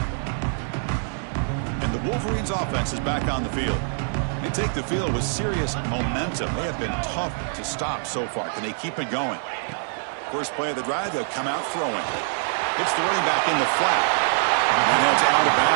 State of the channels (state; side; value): silent; left; 62 dB below the other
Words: And the Wolverines offense is back on the field. They take the field with serious momentum. They have been tough to stop so far. Can they keep it going? First play of the drive, they'll come out throwing. It's the running back in the flat. And heads out of